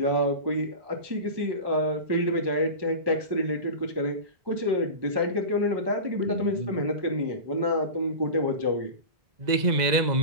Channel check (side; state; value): left; late; 2.0 ms